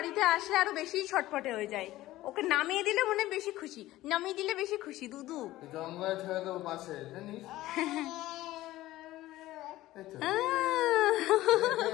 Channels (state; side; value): quieter; right; 16.2 dB